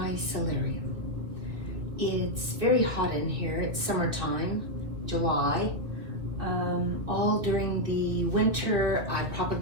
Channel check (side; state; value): left; late; 2.7 ms